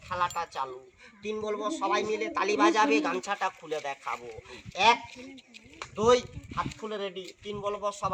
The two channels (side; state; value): both; identical; correlation 1.00